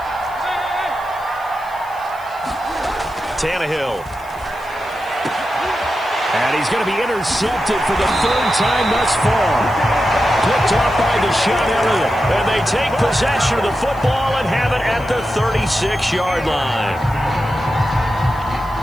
Tannehill. And he's going to be intercepted for the 3rd time thus far. Picked off by Deshaun Elliott. And they take possession of the football and have it at the 36-yard line.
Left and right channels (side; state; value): left; noise; hiss, 25 dB below the sound